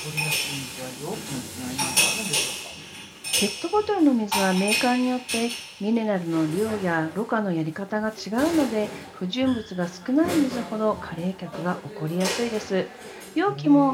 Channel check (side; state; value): both; identical; correlation 1.00